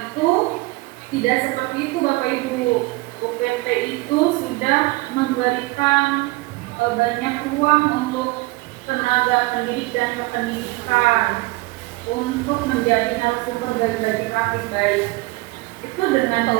itu tidak seperti itu Bapak Ibu. UPT itu sudah memberikan banyak ruang untuk tenaga pendidik dan kependidikan untuk menjadi narasumber dari praktik baik itu dengan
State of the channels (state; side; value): quieter; left; 22.3 dB